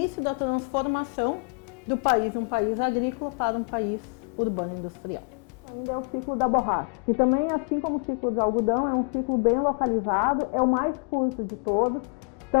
da transformação do país, um país agrícola para um país urbano industrial. Ainda é o ciclo da borracha, que também, assim como o ciclo do algodão, é um ciclo bem localizado, é o mais curto de todos.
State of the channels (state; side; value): quieter; right; 35.3 dB